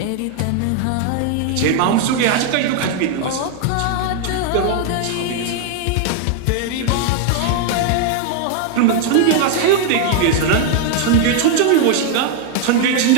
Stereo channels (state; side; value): different; both; correlation 0.00